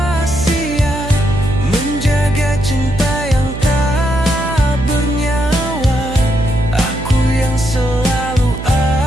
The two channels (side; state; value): right; noise; hum, 8 dB below the sound